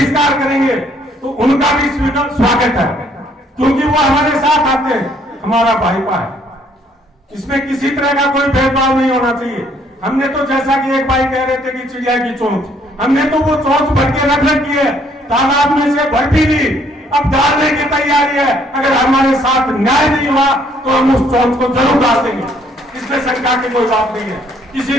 करेंगे तो उनका भी स्वागत है, क्योंकि वो हमारे साथ आते हैं, हमारा भाईपा है। इसमें किसी तरह का कोई भेदभाव नहीं होना चाहिए। हमने तो, जैसा कि एक भाई कह रहे थे कि चिड़िया की चोंच, हमने तो वो चोंच भर के रख रखी है, तालाब में से भर भी ली, अब डालने की तैयारी है। अगर हमारे साथ न्याय नहीं हुआ तो हम उस चोंच को जरूर डाल देंगे, इसमें शंका की कोई बात नहीं है,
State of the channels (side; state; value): both; normal; correlation 0.65